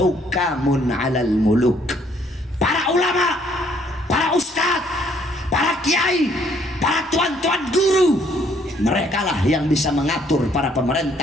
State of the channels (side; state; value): both; normal; correlation 0.65